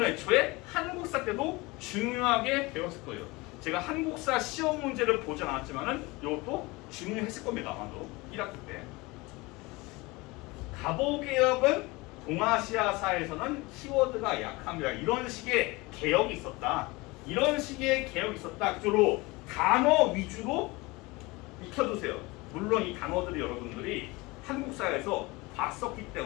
애초에 한국사 때도 중요하게 배웠을 거예요. 제가 한국사 시험 문제를 보지 않았지만은 이것도 중요했을 겁니다. 아마도 1학기 때. 가보개혁은 동아시아사에서는 키워드가 약합니다. 이런 식의 개혁이 있었다. 이런 식의 개혁이 있었다. 그쪽으로 단어 위주로 익혀두세요. 물론 이 단어들이 여러분들이 한국사에서 봤었기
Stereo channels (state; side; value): quieter; right; 23.5 dB